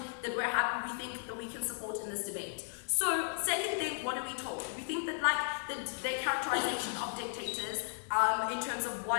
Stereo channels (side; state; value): right; silent; digital silence